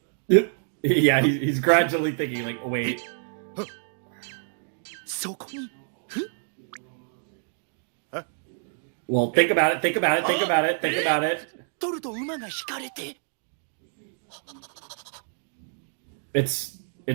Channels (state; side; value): silent; left; digital silence